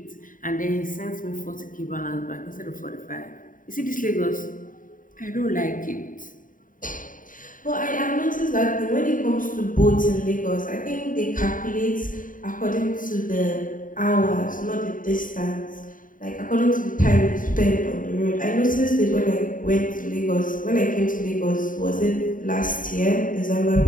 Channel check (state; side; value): late; right; 0.39 ms